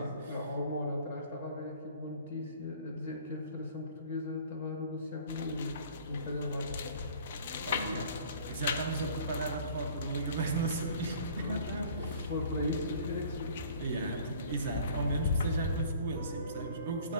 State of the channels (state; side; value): inverted; both; correlation -0.51